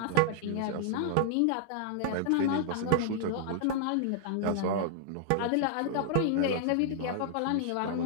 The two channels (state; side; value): different; both; correlation -0.01